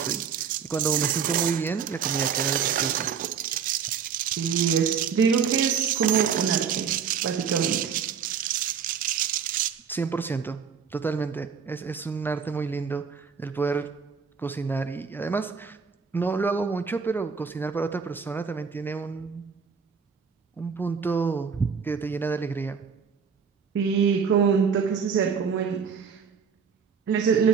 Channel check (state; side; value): quieter; left; 6.5 dB